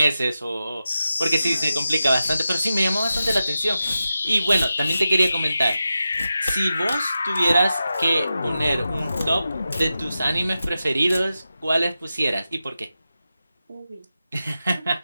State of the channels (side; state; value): both; inverted; correlation -0.91